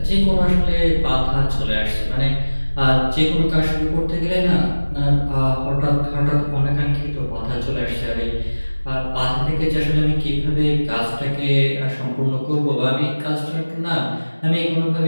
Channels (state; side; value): inverted; both; correlation -1.00